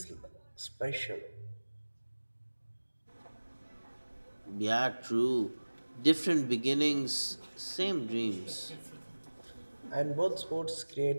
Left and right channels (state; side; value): inverted; both; correlation -1.00